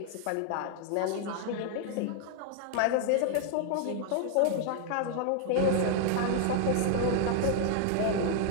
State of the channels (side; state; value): both; different; correlation 0.00